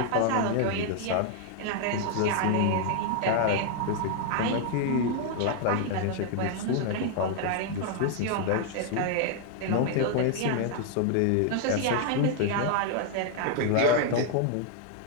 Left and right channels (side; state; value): both; different; correlation 0.00